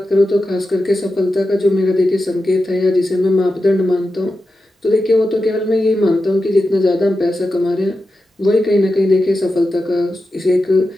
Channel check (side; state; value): both; normal; correlation 0.91